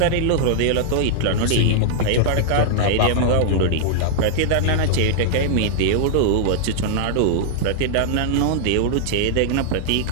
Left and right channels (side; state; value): both; different; correlation -0.01